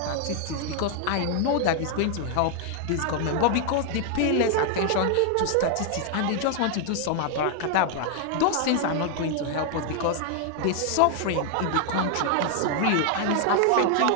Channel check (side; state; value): both; different; correlation 0.00